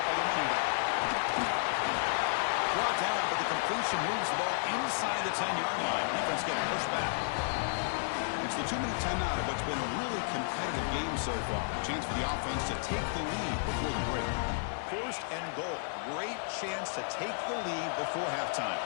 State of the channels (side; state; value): right; silent; digital silence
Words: by the running back. Brought down, but the completion moves the ball inside the 10-yard line. Defense getting pushed back. It's the 2-minute timeout of what's been a really competitive game so far. Chance for the offense to take the lead before the break. First and goal. Great chance to take the lead before halftime.